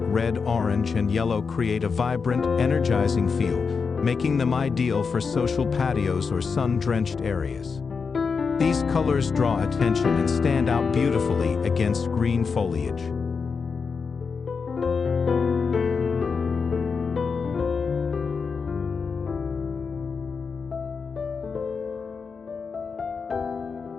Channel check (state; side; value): quieter; right; 5.3 dB